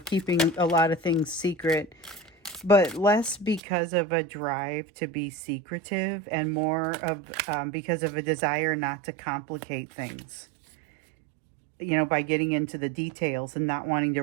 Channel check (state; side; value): drops out; left; at 3.6 s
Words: keeping a lot of things secret. but less because of a drive to be secretive and more of because of a desire not to complicate things, by getting into the details and not wanting